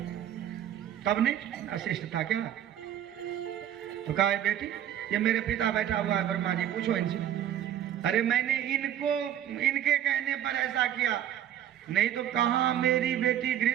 तब नहीं अशिष्ट था क्या? तो कहा बेटी ये मेरे पिता बैठा हुआ है ब्रह्मा जी, पूछो इनसे। अरे मैंने इनके कहने पर ऐसा किया, नहीं तो कहाँ मेरी बेटी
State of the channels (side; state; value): left; quieter; 10.8 dB